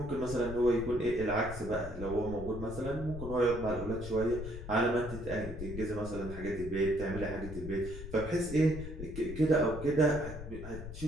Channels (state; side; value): noise; left; rumble, 9 dB below the sound